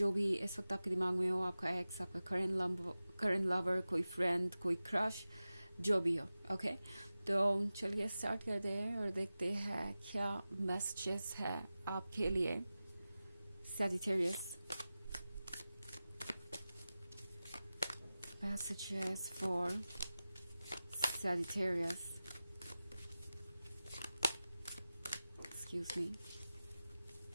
भी इस वक्त आपके दिमाग में हो, आपका एक्स, आपका करंट लवर, कोई फ्रेंड, कोई क्रश, जो भी हो। ओके, तो चलिए स्टार्ट करते हैं और देखते हैं क्या मैसेजेस है आपके लिए Sagittarius. Messages for Sagittarius, excuse me.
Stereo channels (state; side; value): inverted; both; correlation -0.95